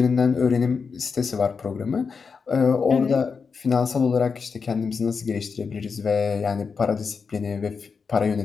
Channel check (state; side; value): quieter; right; 5.4 dB